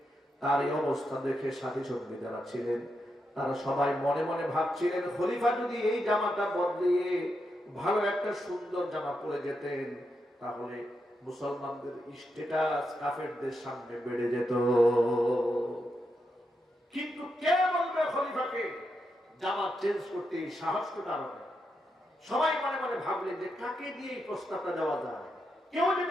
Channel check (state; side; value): normal; both; correlation 0.84